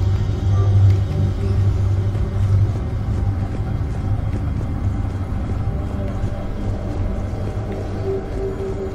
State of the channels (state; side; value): identical; both; correlation 1.00